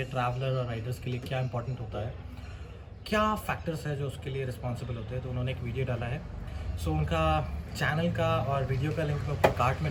ट्रैवलर और राइडर्स के लिए, क्या इंपॉर्टेंट होता है, क्या फैक्टर्स है जो उसके लिए रिस्पॉन्सिबल होते हैं। तो उन्होंने एक वीडियो डाला है। सो उनका चैनल का और वीडियो का लिंक मैं ऊपर कार्ट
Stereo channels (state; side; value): identical; both; correlation 1.00